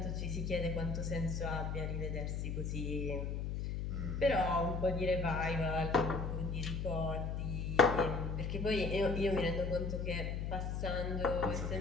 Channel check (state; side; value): noise; left; hum, 2 dB below the sound